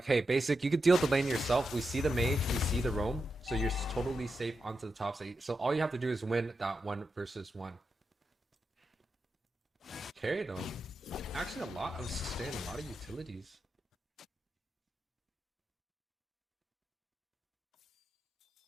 hey, Basic, you could deal with the lane yourself. We see the Mage, we see the Roam, so you're totally safe onto the top side. So all you have to do is win that 1 versus 1. Carry though. Actually, a lot of sustain, a lot of utilities.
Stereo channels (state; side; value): normal; both; correlation 0.88